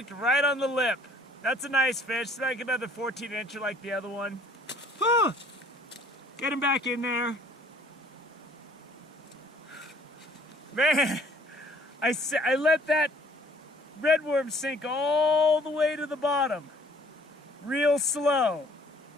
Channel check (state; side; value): normal; both; correlation 0.56